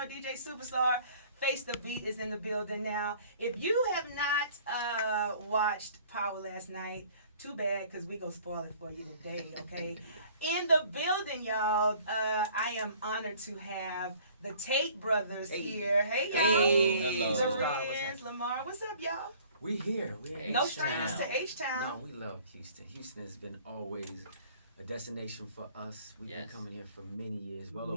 DJ Supastar. Face the Beat is in the building now. If you have not watched Power last night, too bad, because we gonna spoil it for you today, okay? In the building, y'all, I am honored to have the Tate brothers here. Hey, y'all. Hello. Larenz, Lahmard. What's up, y'all? We here. We're No strangers to H-Town. No, we love Houston. Houston has been always a destination for us. We've been coming here for many years, well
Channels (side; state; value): both; inverted; correlation -0.53